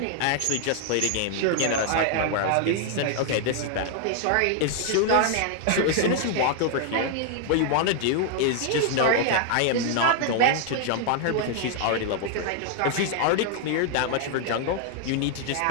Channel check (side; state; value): both; different; correlation 0.00